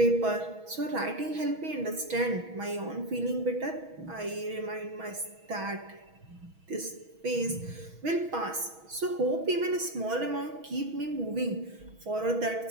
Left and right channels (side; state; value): left; late; 6.3 ms